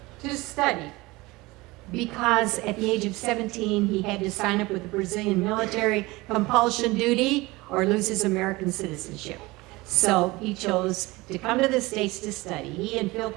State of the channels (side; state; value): left; quieter; 21.7 dB